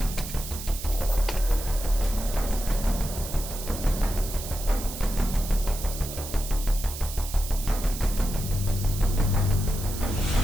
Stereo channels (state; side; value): noise; right; hiss, 10 dB below the sound